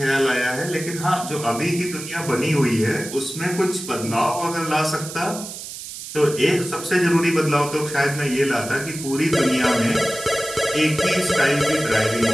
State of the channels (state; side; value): noise; right; hiss, 10 dB below the sound